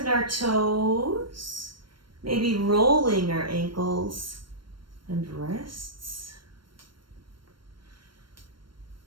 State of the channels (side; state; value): left; late; 0.72 ms